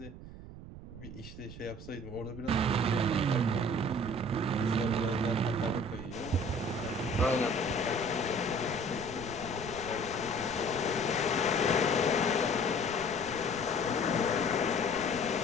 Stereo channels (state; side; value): noise; right; rumble, 13 dB below the sound